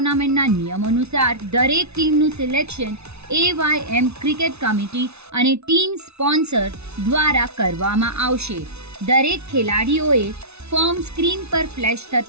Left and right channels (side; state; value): left; late; 0.80 ms